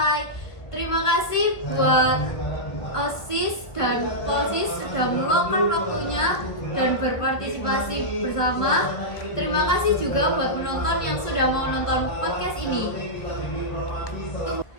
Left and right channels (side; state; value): right; late; 1.2 ms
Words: Terima kasih buat OSIS dan Polsis sudah meluangkan waktunya dan berpartisipasi bersama. Terima kasih juga buat penonton yang sudah mau nonton podcast ini.